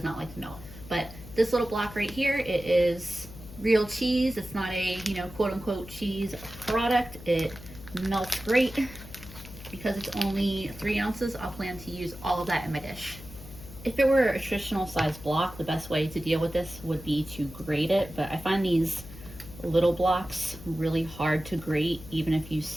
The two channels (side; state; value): left; noise; hum, 16 dB below the sound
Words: not like to melt. But this little block right here, it is real cheese. It's not a, quote unquote cheese product. It melts great. Because it's only 3 ounces, I'll plan to use all of that in my dish. If it were a traditional size block, the best way to deal with this would be to grate it, but I find these little blocks really hard to grate even if you